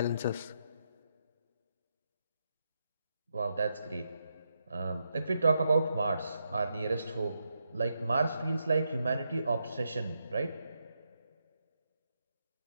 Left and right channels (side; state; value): both; inverted; correlation -0.83